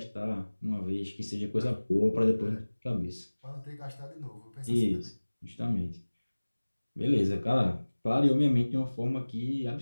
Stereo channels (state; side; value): inverted; both; correlation -1.00